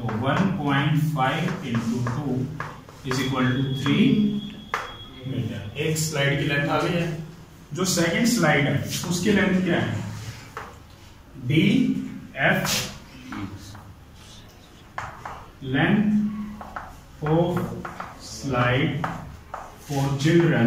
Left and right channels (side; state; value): both; identical; correlation 1.00